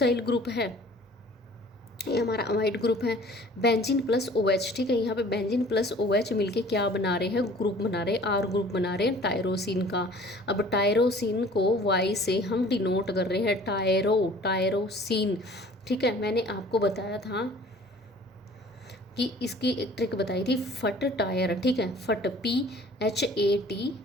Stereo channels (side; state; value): both; normal; correlation 0.50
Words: ग्रुप है, ये हमारा अमाइड ग्रुप है। बेंजीन प्लस OH, ठीक है। यहाँ पे बेंजीन प्लस OH मिलके क्या बना रहे हैं, ग्रुप बना रहे हैं, R ग्रुप बना रहे हैं टायरोसिन का। अब टायरोसिन को Y से हम डिनोट कर रहे हैं, टायरोसिन, ठीक है। मैंने आपको बताया था कि इसकी एक ट्रिक बताई थी, फट टायर, ठीक है, फट